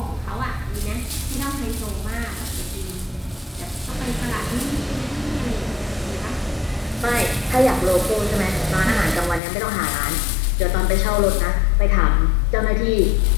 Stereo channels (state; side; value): drops out; right; at 9.4 s